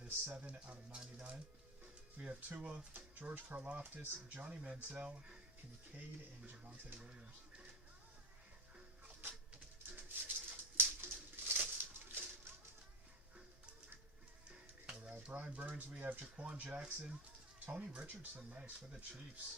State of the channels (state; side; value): normal; both; correlation 0.09